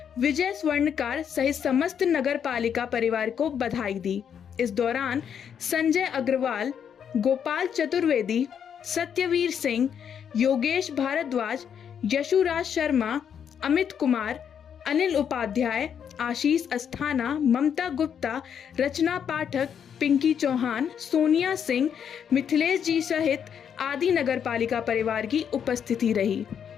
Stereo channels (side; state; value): right; quieter; 8.1 dB